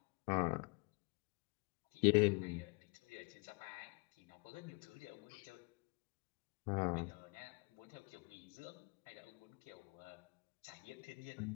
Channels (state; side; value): quieter; right; 31.6 dB